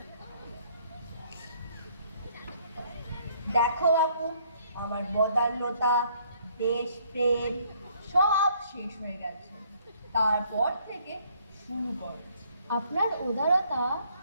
দেখো বাপু, আমার বদান্যতা, দেশপ্রেম সব শেষ হয়ে গেছে। তারপর থেকে শুরু করো। আপনার উদারতা।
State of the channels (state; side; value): inverted; both; correlation -0.64